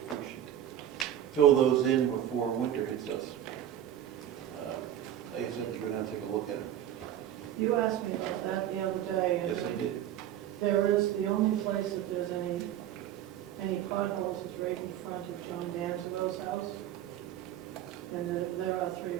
should fill those in before winter hits us. I guess I have to go down and take a look at it. You asked me about that the other day. and Yes, I did. There is, the only place that there's any potholes is right in front of John Danzerow's house. And there are 3 or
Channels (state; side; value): quieter; left; 11.3 dB